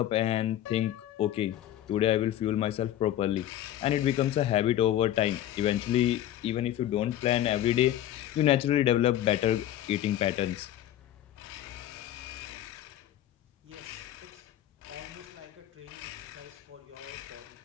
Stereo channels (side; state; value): right; quieter; 12.3 dB